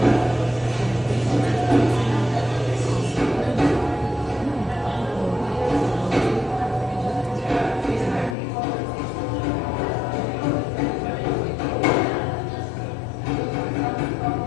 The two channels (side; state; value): right; drops out; at 8.3 s